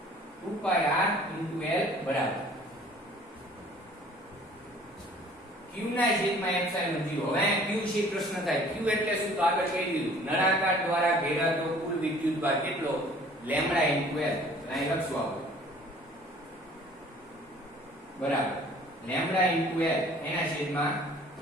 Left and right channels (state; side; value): normal; both; correlation 0.52